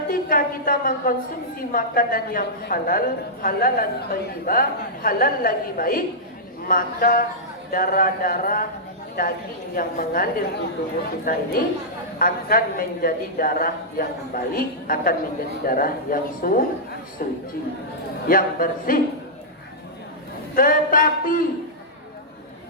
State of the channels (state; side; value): normal; both; correlation -0.12